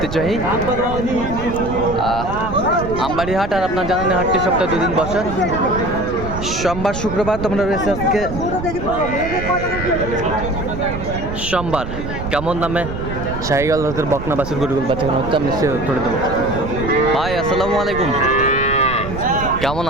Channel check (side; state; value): right; noise; rumble, 8 dB below the sound